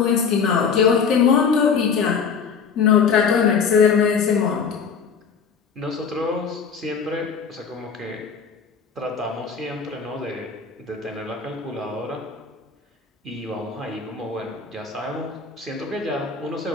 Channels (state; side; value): quieter; right; 6.0 dB